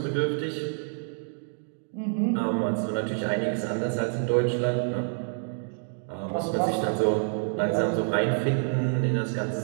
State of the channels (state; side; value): silent; left; digital silence